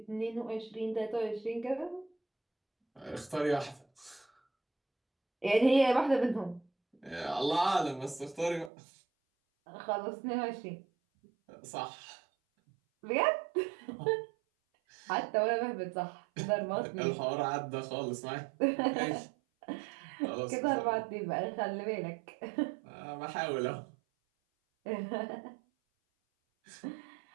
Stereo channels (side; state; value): left; drops out; at 8.7 s